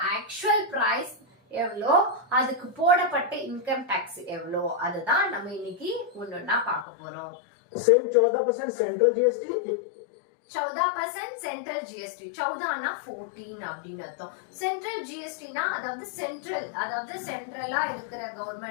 ஆக்சுவல் பிரைஸ் எவ்வளோ, அதுக்கு போடப்பட்ட இன்கம் டாக்ஸ் எவ்வளோ, அதுதான் நம்ம இன்னைக்கு ஒன்னொன்னா பார்க்க போறோம். 14% சென்ட்ரல் ஜிஎஸ்டி, 14% சென்ட்ரல் ஜிஎஸ்டி. 14னா 14 அப்படின்னு அர்த்தம். சென்ட்ரல் ஜிஎஸ்டினா அதாவது சென்ட்ரலா இருக்கிற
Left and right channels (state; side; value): drops out; right; at 6.9 s